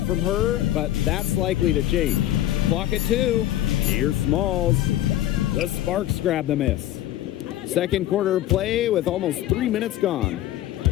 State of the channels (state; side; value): quieter; right; 13.6 dB